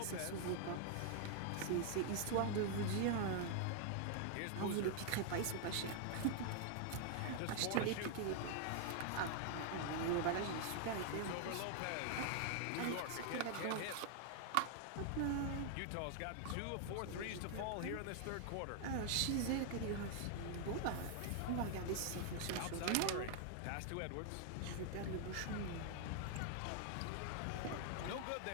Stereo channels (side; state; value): both; different; correlation 0.00